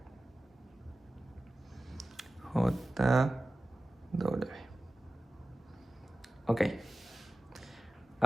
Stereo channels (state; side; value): normal; both; correlation 0.96